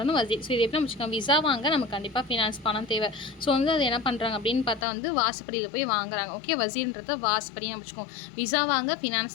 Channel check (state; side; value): drops out; right; at 4.9 s